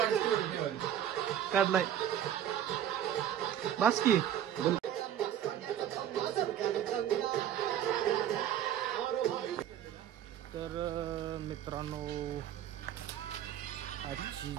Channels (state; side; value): quieter; left; 10.4 dB